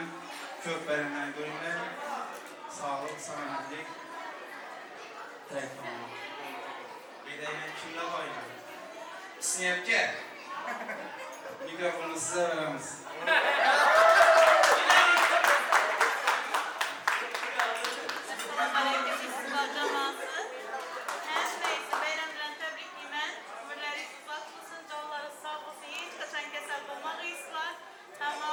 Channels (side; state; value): both; identical; correlation 1.00